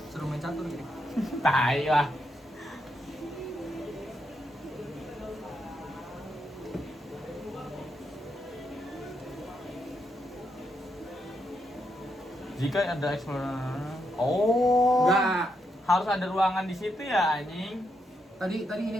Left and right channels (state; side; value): normal; both; correlation 0.81